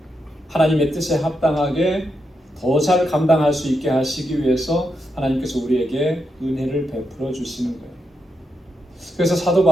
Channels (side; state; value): both; normal; correlation 0.84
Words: 하나님의 뜻에 합당하게 더 잘 감당할 수 있게 하시기 위해서 하나님께서 우리에게 은혜를 베풀어 주시는 거예요. 그래서 사도